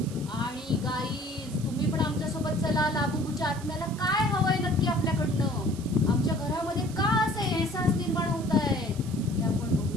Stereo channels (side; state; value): right; noise; hiss, 18 dB below the sound